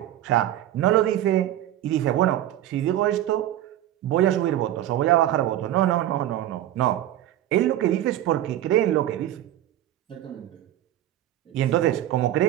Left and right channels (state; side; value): quieter; left; 12.9 dB